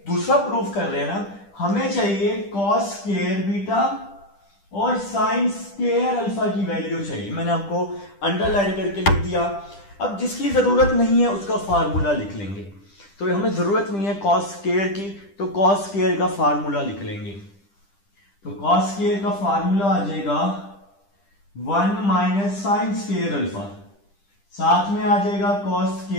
दूसरा प्रूफ कर रहे हैं ना, हमें चाहिए कॉस स्क्वायर बीटा और साइन स्क्वायर अल्फा की वैल्यू चाहिए। मैंने आपको अंडरलाइन करके लिख दिया। अब जिसकी जरूरत नहीं है उसका फार्मूला लिख लेंगे। तो हमें जरूरत नहीं है कॉस स्क्वायर की, तो कॉस स्क्वायर का फार्मूला लिख लेंगे। तो कॉस स्क्वायर का फार्मूला आ जाएगा 1 माइनस साइन स्क्वायर अल्फा, साथ में आ जाएगा कॉस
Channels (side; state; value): right; late; 10 ms